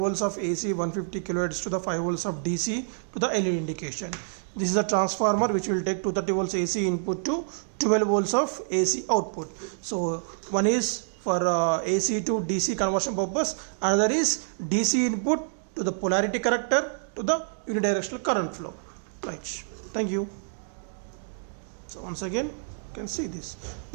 of AC 150 kilohertz to the 5 volts of DC to the LED indication. This is a transformer which will take 230 volts AC input to 12 volts of AC output. So one is for AC to DC conversion purpose, another is DC input to the polarity corrector to the unidirectional current flow. Right, thank you. So once again you can see this,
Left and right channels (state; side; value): silent; left; digital silence